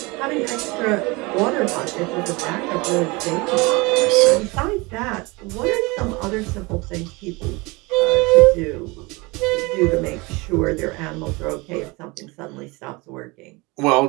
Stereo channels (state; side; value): quieter; left; 25.3 dB